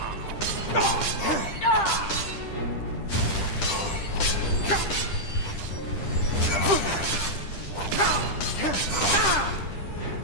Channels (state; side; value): late; right; 10 ms